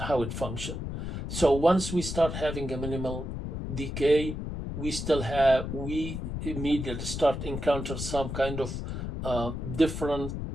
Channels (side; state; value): left; noise; rumble, 5 dB below the sound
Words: how it functions. So once we start having a minimal decay, we immediately start encounter some kind of different